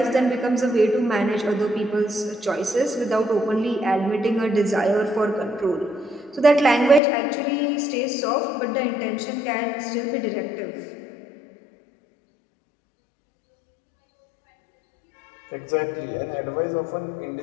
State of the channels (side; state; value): right; drops out; at 7.0 s